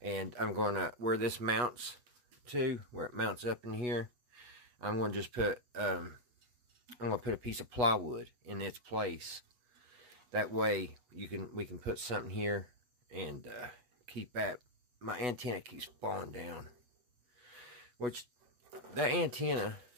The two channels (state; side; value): late; left; 8.2 ms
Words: I'm going to, where this mounts to, where it mounts up in here, I'm going to just put, I'm going to put a piece of plywood in its place. That way, we can put something here and keep that. My antenna keeps falling down. Which, that antenna